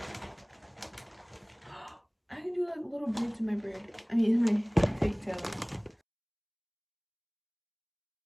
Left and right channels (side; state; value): both; identical; correlation 1.00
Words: I can do like little beads in my braid. I mean, in my pigtails.